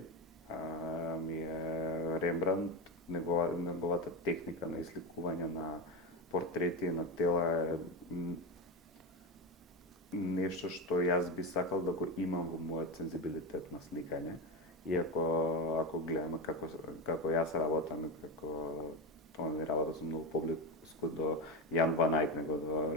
ми е Рембрандт, неговата техника на изликување на портрети на тела е нешто што јас би сакал да го имам во мојот сензибилитет на сликање Иако ако гледаме како јас работам и како тоа не работа со многу поблиску до Jan van Eyck него до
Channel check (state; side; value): normal; both; correlation 0.16